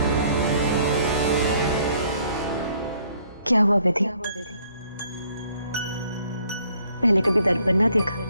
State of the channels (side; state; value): both; inverted; correlation -0.64